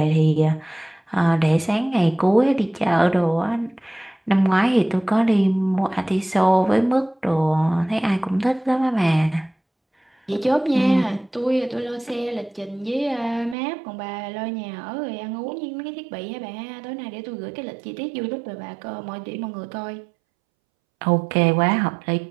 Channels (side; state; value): left; drops out; at 13.6 s